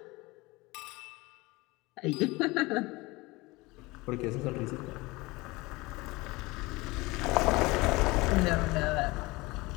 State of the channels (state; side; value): quieter; right; 22.6 dB